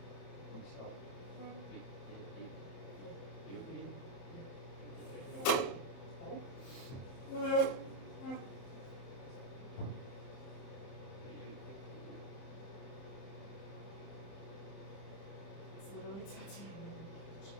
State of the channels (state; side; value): late; right; 30 ms